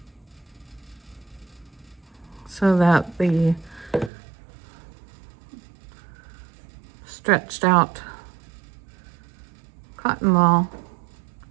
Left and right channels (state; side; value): drops out; left; at 4.1 s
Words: So that the stretched out cotton ball